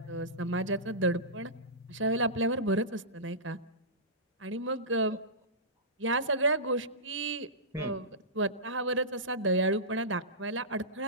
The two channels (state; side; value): normal; both; correlation -0.19